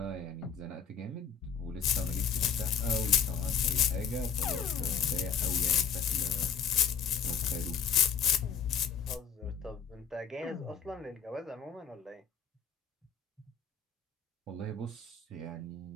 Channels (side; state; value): right; quieter; 6.9 dB